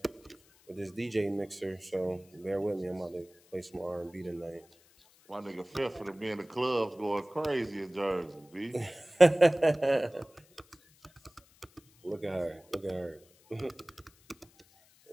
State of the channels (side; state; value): left; noise; hiss, 29 dB below the sound